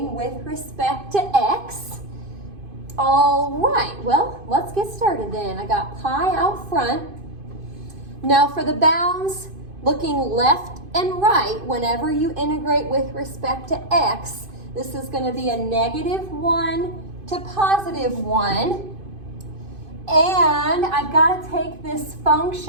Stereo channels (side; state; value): left; late; 2.5 ms